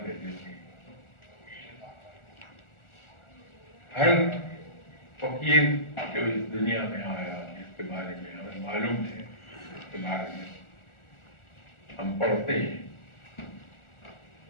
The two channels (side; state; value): right; late; 1.4 ms